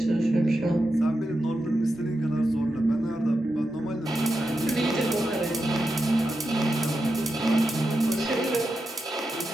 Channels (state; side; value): normal; both; correlation 0.88